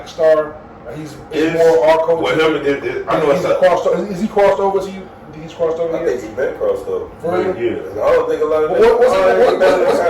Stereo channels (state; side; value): identical; both; correlation 1.00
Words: star? Like he's more our culture. Well, him, I know it's is he crossed over to you? He's crossed over. I think he's been crossed over. For real? Yeah. I don't think a lot of